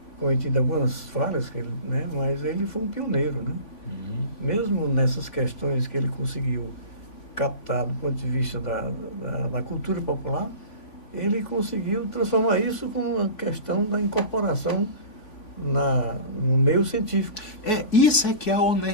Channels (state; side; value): late; right; 3.5 ms